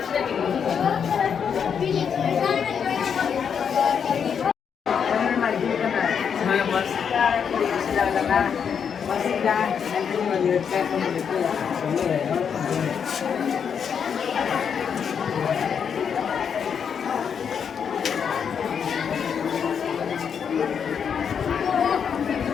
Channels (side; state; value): right; quieter; 7.2 dB